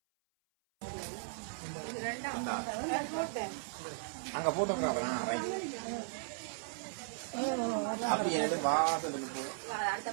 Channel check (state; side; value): silent; left; 53 dB below the other